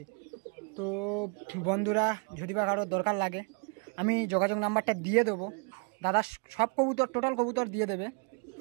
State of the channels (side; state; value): left; quieter; 36.1 dB